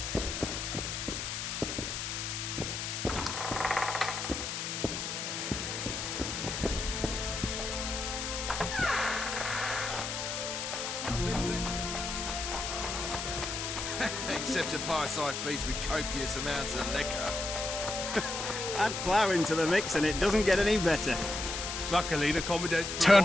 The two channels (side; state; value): left; noise; hiss, 4 dB below the sound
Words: except to fireside feasts with copious amounts of liquor. Add plough into the mix and it doesn't get any better. Luckily, the commandant's